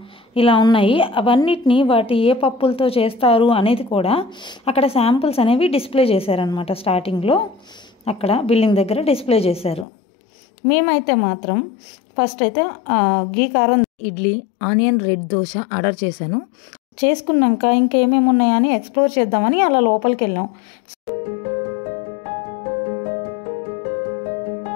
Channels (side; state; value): right; drops out; at 9.9 s